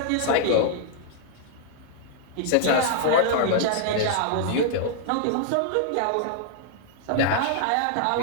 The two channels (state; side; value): different; both; correlation -0.01